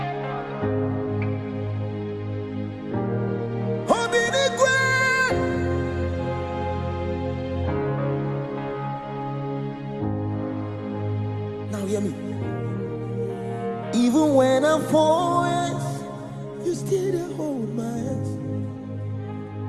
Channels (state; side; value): identical; both; correlation 1.00